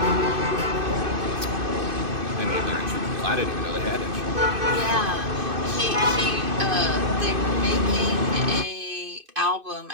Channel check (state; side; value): late; left; 2.5 ms